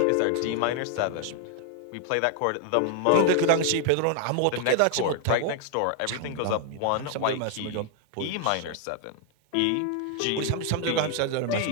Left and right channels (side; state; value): both; different; correlation 0.00